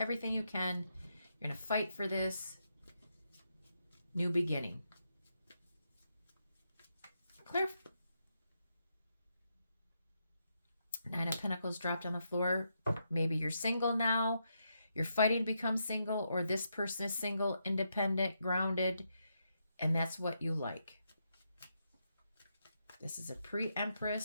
you can. You're going to fight for this new beginning. Clear. Nine of Pentacles dropped on the floor. Maybe you're single now. You're fighting to become single, or this person is single, independent, grounded, and that's what you like. This is a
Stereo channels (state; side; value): inverted; both; correlation -0.81